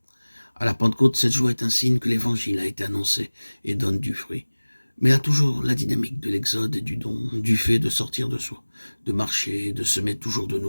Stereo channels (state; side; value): inverted; both; correlation -1.00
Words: À la Pentecôte, cette joie est un signe que l'Évangile a été annoncé et donne du fruit. Mais elle a toujours la dynamique de l'exode et du don, du fait de sortir de soi, de marcher, de semer toujours de